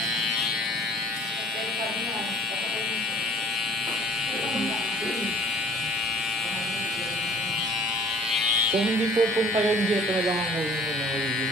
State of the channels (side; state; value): both; normal; correlation 0.52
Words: Kung hindi pupunta yung dito na lang ang huli mo na